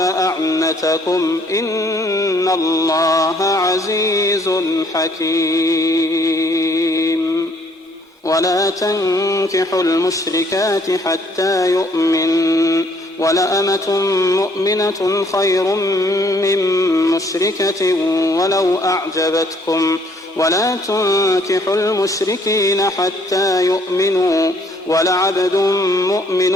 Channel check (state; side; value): normal; both; correlation 0.63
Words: إن الله عزيز حكيم. ولا تنكحوا المشركات حتى يؤمنوا ولأمة مؤمنة خير من مشركة ولو أعجبتكم ولا تنكحوا المشركين حتى يؤمنوا ولعبد